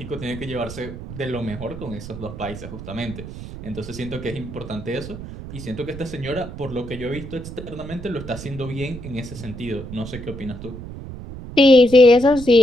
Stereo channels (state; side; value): noise; right; rumble, 11 dB below the sound